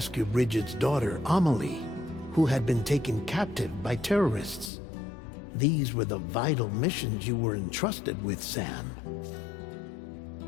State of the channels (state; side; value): drops out; right; at 4.7 s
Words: Bridget's daughter, Amelie, who had been taken captive by terrorists. These were the vital missions you were entrusted with, Sam.